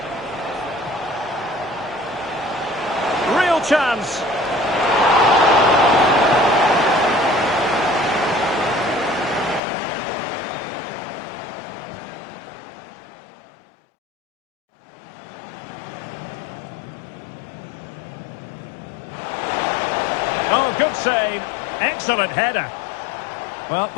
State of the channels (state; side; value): drops out; right; at 9.6 s